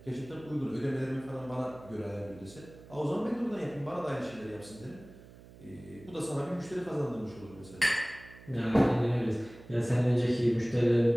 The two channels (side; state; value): right; noise; hum, 20 dB below the sound